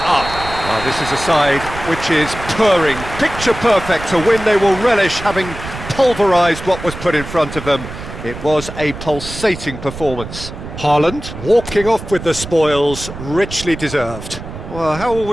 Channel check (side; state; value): right; noise; rumble, 11 dB below the sound